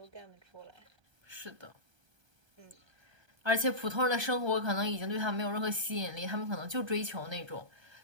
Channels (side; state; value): left; late; 1.3 ms